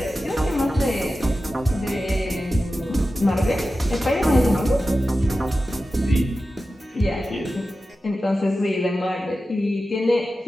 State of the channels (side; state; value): both; normal; correlation 0.93